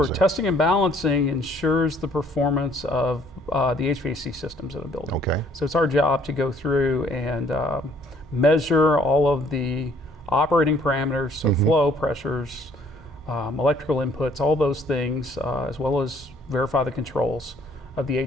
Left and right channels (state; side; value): normal; both; correlation 0.61